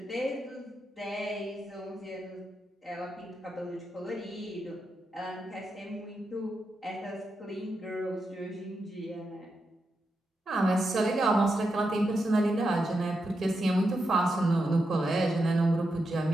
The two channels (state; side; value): normal; both; correlation 0.86